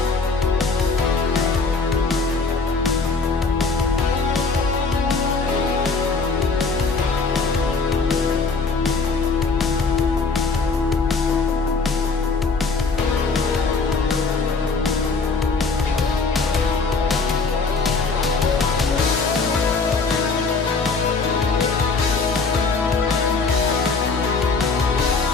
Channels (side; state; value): right; quieter; 4.3 dB